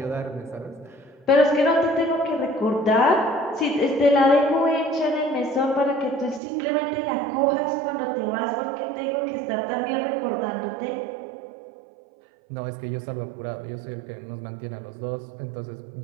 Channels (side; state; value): left; drops out; at 6.4 s